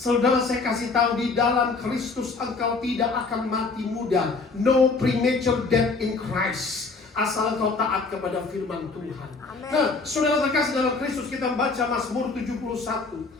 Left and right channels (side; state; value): right; quieter; 4.1 dB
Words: saya kasih tahu, di dalam Kristus engkau tidak akan mati muda. No premature death in Christ. Asal kau taat kepada firman Tuhan. Amen. Nah, saudara terkasih dalam Kristus, kita baca Mazmur 71